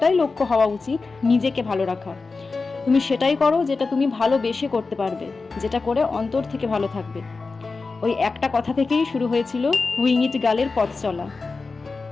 লক্ষ্য হওয়া উচিত, নিজেকে ভালো রাখা। তুমি সেটাই করো যেটা তুমি ভালোবেসে করতে পারবে, যেটা করে অন্তর থেকে ভালো থাকবে। ওই একটা কথা থেকেই শুরু হয়েছিল উইং ইট গার্লের পথ চলা।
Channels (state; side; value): quieter; right; 4.1 dB